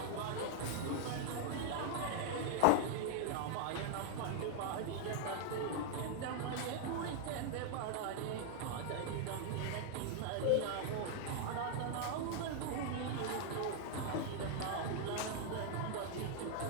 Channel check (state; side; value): different; both; correlation 0.00